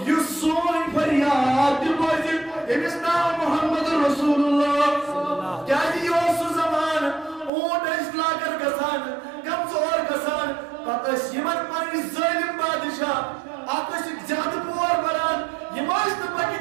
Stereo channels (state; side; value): drops out; left; at 7.5 s